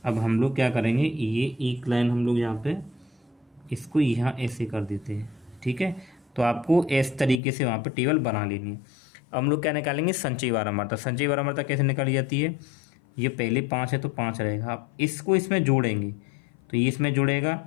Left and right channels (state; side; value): drops out; right; at 7.4 s